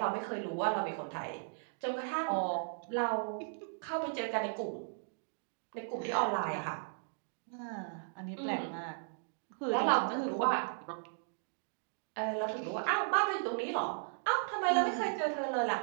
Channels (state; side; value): silent; left; digital silence